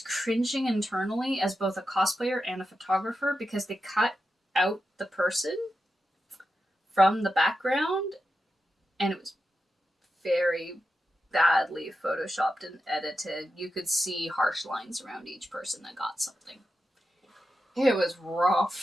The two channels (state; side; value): normal; both; correlation 0.89